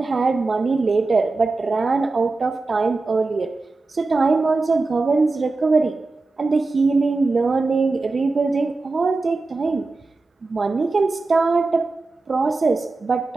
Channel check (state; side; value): quieter; left; 3.6 dB